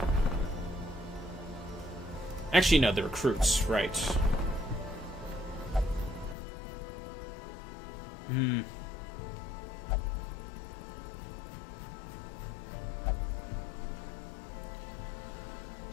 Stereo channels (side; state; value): right; drops out; at 6.4 s